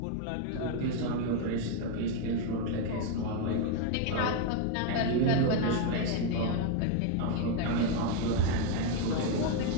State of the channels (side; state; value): both; different; correlation 0.01